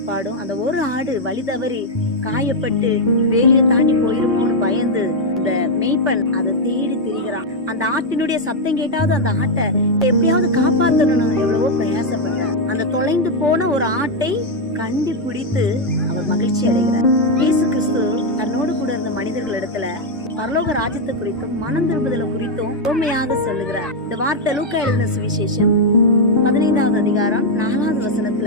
அந்த ஒரு ஆடு வழி தவறி காயப்பட்டு வேலியை தாண்டி போயிருமோன்னு பயந்து இந்த மேய்ப்பன் அதை தேடி திரிகிறான். அந்த ஆட்டினுடைய சத்தம் கேட்டாவது அந்த ஆட்டை எப்படியாவது காப்பாற்றணும் எவ்வளவோ பிரயாசப்பட்டார். அந்த தொலைந்து போன ஒரு ஆட்டை கண்டுபிடித்து அவர் மகிழ்ச்சி அடைகிறார். இயேசு கிறிஸ்து தன்னோடு கூட இருந்த மனிதர்கள் இடத்துல பரலோக ராஜ்யத்தை குறித்தும் மனம் திரும்புதலை குறித்தும் உண்மையாக சொல்லுகிறார். இந்த வார்த்தை லூக்கா எழுதின சுவிசேஷம் 15வது அதிகாரம் 4வது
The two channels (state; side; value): normal; both; correlation 0.00